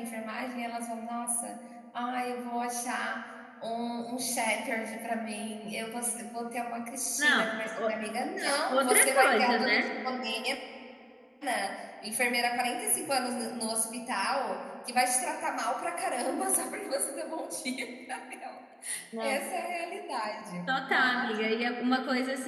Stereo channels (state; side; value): identical; both; correlation 1.00